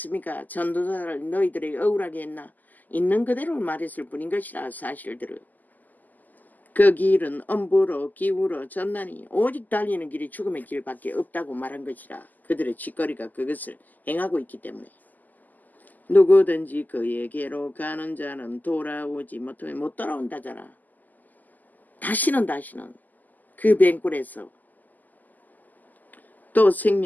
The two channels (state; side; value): late; right; 0.083 ms